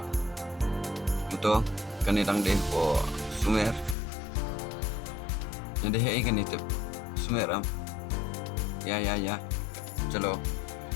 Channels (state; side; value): drops out; right; at 4.0 s